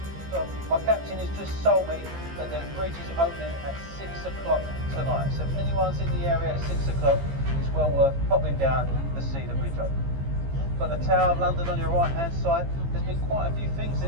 So my captain has just told me that the bridge is opening at 6 o'clock tonight. So if anyone's in the area at 6 o'clock, it's well worth popping down to see the bridge open. Got the Tower of London on your right hand side. There's been quite a few things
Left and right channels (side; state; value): left; late; 15 ms